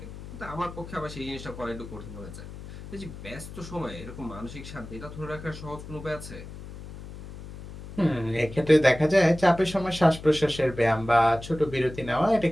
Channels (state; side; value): noise; left; hum, 13 dB below the sound